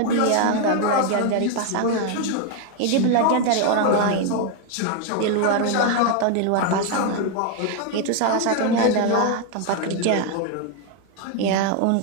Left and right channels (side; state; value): both; different; correlation 0.01